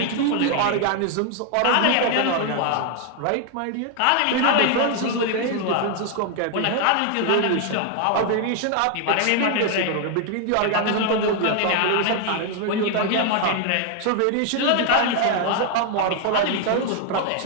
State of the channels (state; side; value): different; both; correlation 0.00